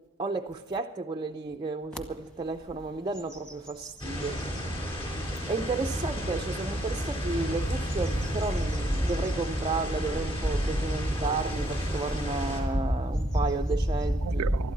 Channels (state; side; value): normal; both; correlation 0.69